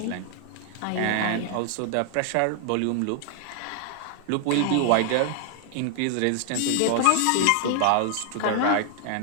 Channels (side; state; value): both; different; correlation 0.00